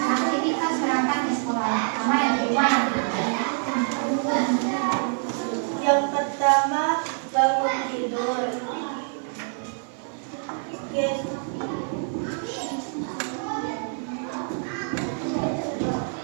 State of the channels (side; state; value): left; silent; 56 dB below the other